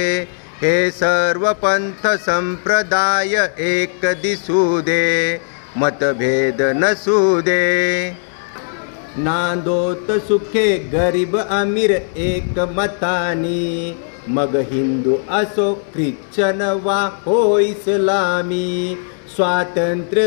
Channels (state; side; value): silent; right; 68 dB below the other